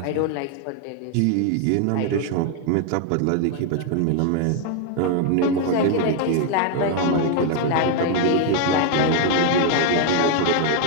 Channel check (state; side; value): different; both; correlation 0.00